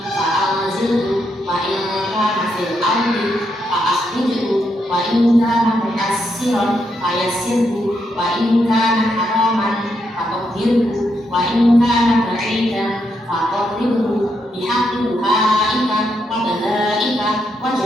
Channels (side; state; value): both; normal; correlation 0.80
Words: wa in kana fil ardi fa'akhrijhu wa in kana muyassiran fayassirhu wa in kana haraman fatahhirhu wa in kana ba'idan faqarribhu bihaqqi du'aika wa dalaika wa